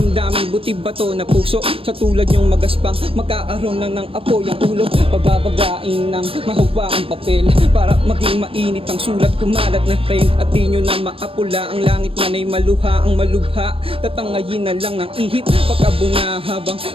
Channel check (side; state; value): left; late; 0.27 ms